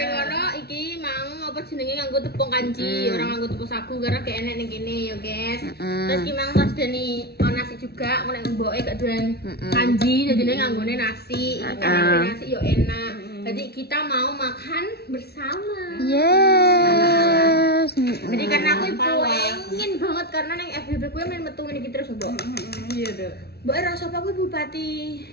ngono iki mau apa jenenge nganggo tepung kanji, orang nganggo tepung sagu karena gak enak ning kene ya guys. Terus ki mang pas deni nasi juga, nek mboke gak doyan kanji, jadi nganggone nasi. Karena nasi yo enak. Jadi kita mau makan bersama. Yes. Jadi karena aku pengen banget karena neng FBB gue main metu ini terus mbok. Iya, Dok. Mbok rasa apa kuwi Bupati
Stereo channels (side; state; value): right; late; 0.47 ms